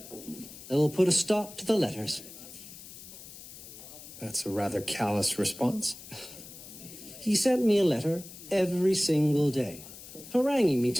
I will put a stop to the letters. That's a rather callous response. He sent me a letter every single day, haranguing me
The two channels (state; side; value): noise; left; hiss, 15 dB below the sound